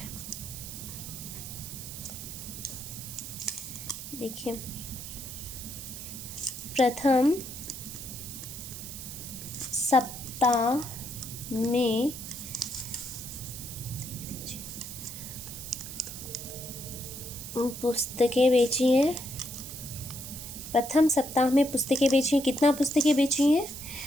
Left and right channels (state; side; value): noise; right; hiss, 9 dB below the sound